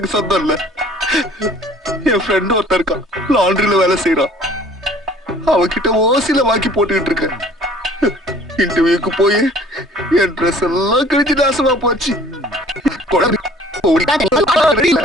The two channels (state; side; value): normal; both; correlation 0.53